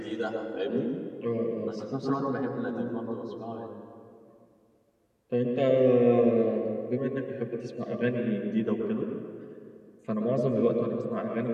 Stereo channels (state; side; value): identical; both; correlation 1.00